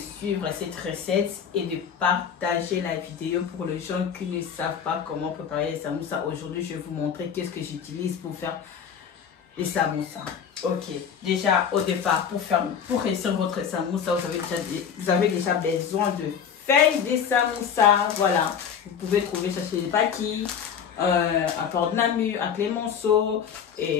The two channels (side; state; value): right; quieter; 7.6 dB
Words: cette recette et de partager la vidéo pour les gens qui ne savent pas comment préparer les samoussas. Aujourd'hui, je vais vous montrer qu'est-ce que j'utilise pour faire les samoussas. Ok, déjà au départ, pour réussir votre samoussa, vous avez déjà besoin de feuilles de samoussa. Voilà, vous pouvez trouver ça chez les paquis, à Port de Namur, à Clémenceau.